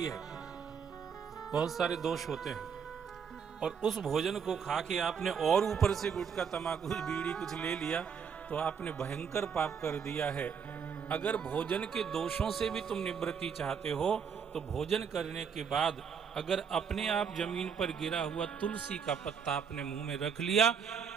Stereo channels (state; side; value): quieter; left; 6.8 dB